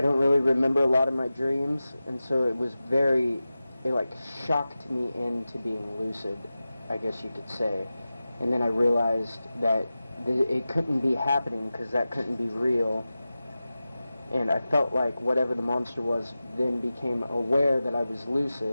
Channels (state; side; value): inverted; both; correlation -0.95